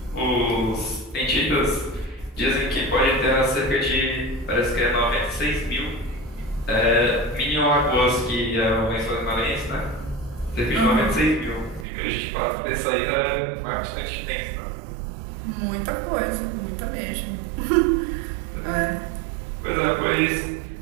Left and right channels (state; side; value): drops out; left; at 11.9 s